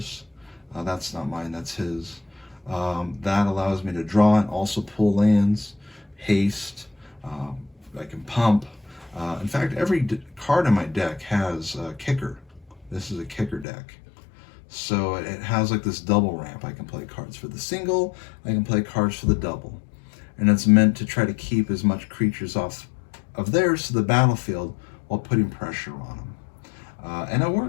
That's not mine, that's his. That allows me to draw and also pull lands, haste. I can pump. In fact, every card in my deck has a kicker. This is a kicker deck. So it has like this double ramp. I can play cards for the single, I can play cards for the double. And it's meant to try to keep as much creatures off of theirs to the battlefield while putting pressure on them. And it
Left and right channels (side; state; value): right; drops out; at 13.7 s